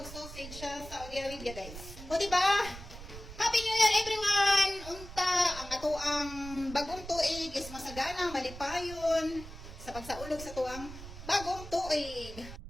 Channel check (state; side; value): noise; right; rumble, 13 dB below the sound